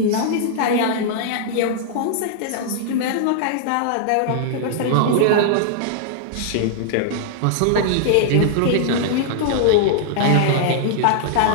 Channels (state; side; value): different; both; correlation -0.01